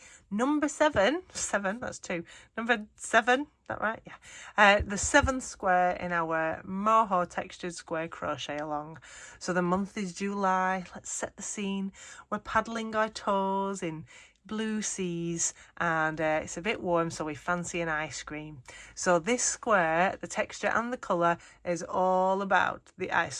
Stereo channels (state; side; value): identical; both; correlation 1.00